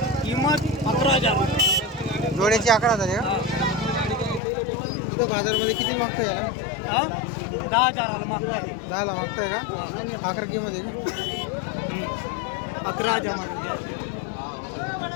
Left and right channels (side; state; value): right; drops out; at 4.4 s